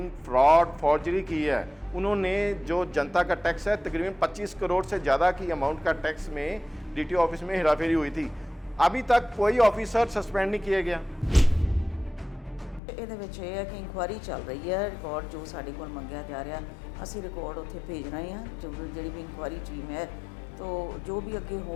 फ्रॉड, फॉर्जरी की है। उन्होंने जो जनता का टैक्स है, तकरीबन 25 करोड़ से ज़्यादा की अमाउंट का टैक्स में डीटीओ ऑफिस में हेराफेरी हुई थी। अभी तक कोई ऑफिसर सस्पेंड नहीं किया गया। ਇਹਦੇ ਵਿੱਚ ਇਹ ਹੈ ਕਿ ਇਨਕੁਆਇਰੀ ਚੱਲ ਰਹੀ ਹੈ। ਰਿਕਾਰਡ ਜੋ ਸਾਡੇ ਕੋਲ ਮੰਗਿਆ ਜਾ ਰਿਹਾ, ਅਸੀਂ ਰਿਕਾਰਡ ਉੱਥੇ ਭੇਜ ਰਹੇ ਹਾਂ। ਜਿਹੜੀ ਵੀ ਇਨਕੁਆਇਰੀ ਟੀਮ ਹੈ, तो जो भी अगे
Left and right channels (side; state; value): right; drops out; at 12.8 s